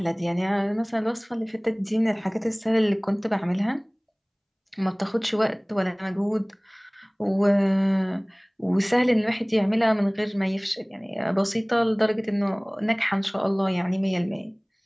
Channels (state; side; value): identical; both; correlation 1.00